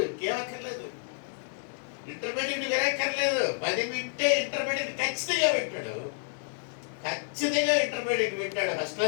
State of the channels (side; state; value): right; silent; digital silence